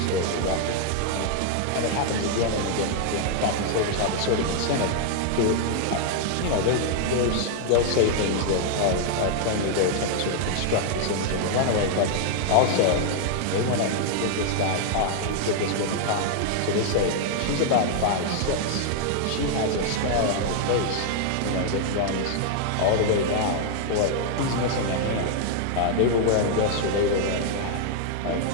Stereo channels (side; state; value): both; different; correlation 0.00